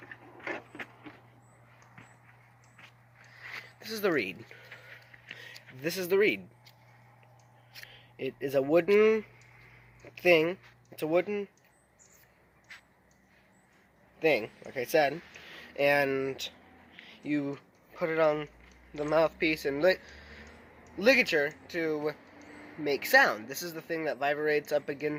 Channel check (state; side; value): identical; both; correlation 1.00